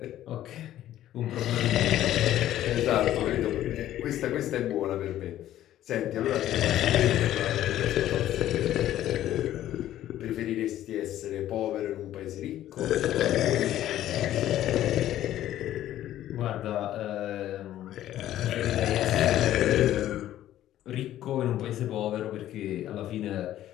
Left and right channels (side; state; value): right; quieter; 12.9 dB